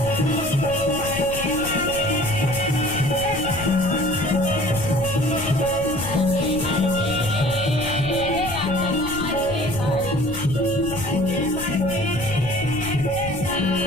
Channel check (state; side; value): noise; left; rumble, 10 dB below the sound